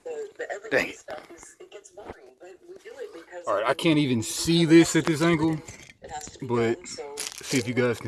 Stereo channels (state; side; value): identical; both; correlation 1.00